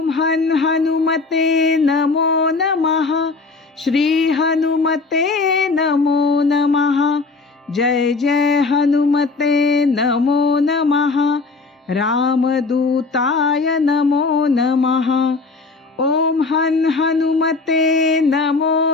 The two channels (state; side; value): quieter; right; 4.0 dB